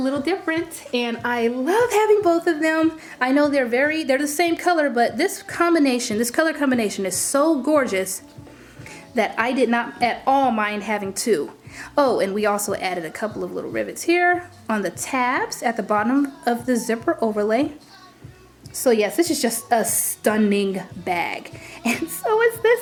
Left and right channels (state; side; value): identical; both; correlation 1.00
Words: different. And I love having both of them. I know they're the same color, but this color combination is so gorgeous that I did not at all mind having two. Oh, and we also added a couple of little rivets here on the tabs at the bottom of the zipper overlay. So yes, this is just a stunning bag. And so is